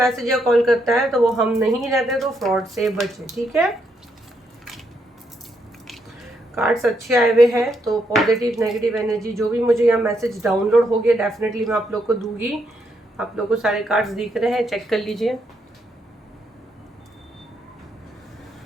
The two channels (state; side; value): normal; both; correlation 0.77